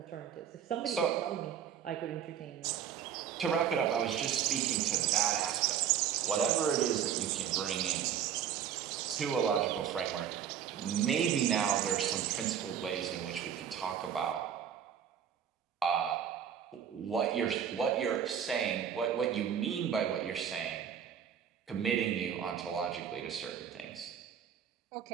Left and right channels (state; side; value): quieter; left; 8.7 dB